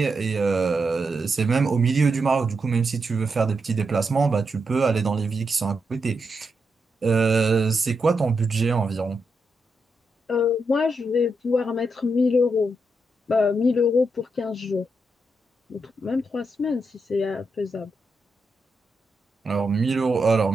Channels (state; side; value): normal; both; correlation 0.84